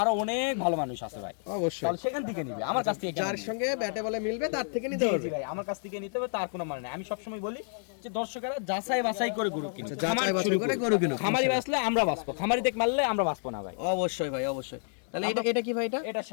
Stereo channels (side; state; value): right; silent; digital silence